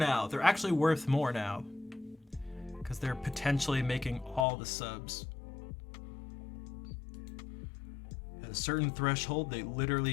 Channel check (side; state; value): right; drops out; at 4.5 s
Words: They're actually worth more now because they're potentially making all the subs. At a certain threshold, they